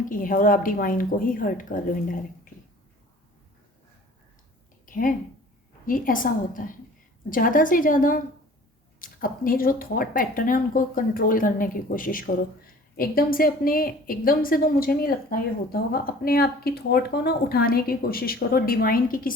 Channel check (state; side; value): normal; both; correlation 0.48